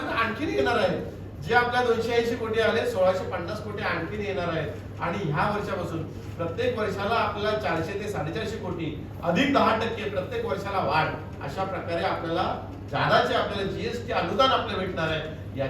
आणखीन येणार आहेत. जे आपल्या 280 कोटी आले 1650 कोटी आणखीन येणार आहेत आणि ह्या वर्षापासून प्रत्येक वर्षाला आपल्याला 400 ते 450 कोटी अधिक 10% प्रत्येक वर्षाला वाढ अशा प्रकारे आपल्याला जादाचे आपल्याला जीएसटी अनुदान आपल्याला भेटणार आहे.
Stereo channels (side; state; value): both; identical; correlation 1.00